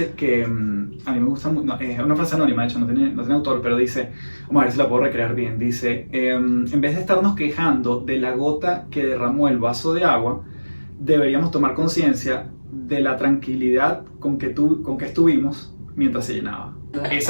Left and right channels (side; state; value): both; inverted; correlation -1.00